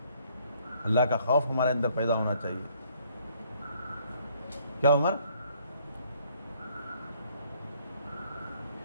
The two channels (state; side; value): inverted; both; correlation -0.64